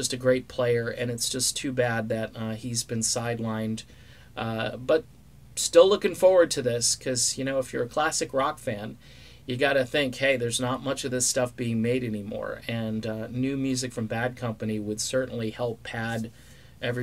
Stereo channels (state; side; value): identical; both; correlation 1.00